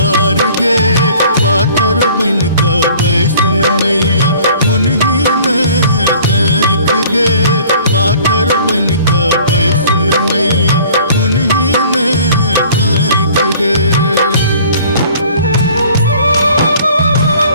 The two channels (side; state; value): both; inverted; correlation -0.51